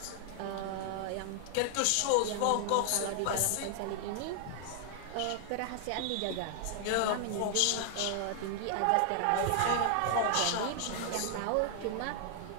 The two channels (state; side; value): different; both; correlation 0.00